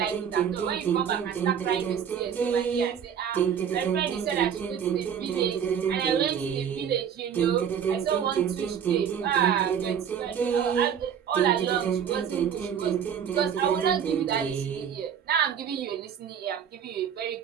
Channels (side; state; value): left; quieter; 8.1 dB